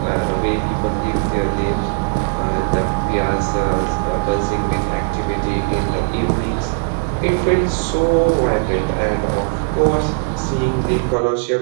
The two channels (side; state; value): left; silent; digital silence